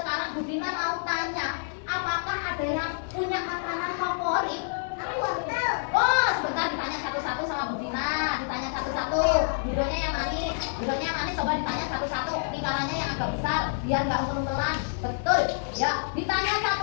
Budina mau tanya, apakah ada yang punya makanan favorit? Oh, sebentar ditanya satu-satu sama Budina. Ditanya satu-satu. Bidonya yang manis, coba ditanya satu-satu. Lingkarannya yang agak besar, biar nggak umpel-umpelan. Betul. Ya, ditanya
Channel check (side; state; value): right; silent; digital silence